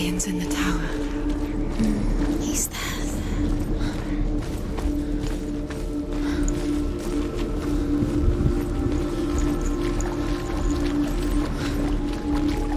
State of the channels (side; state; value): both; identical; correlation 1.00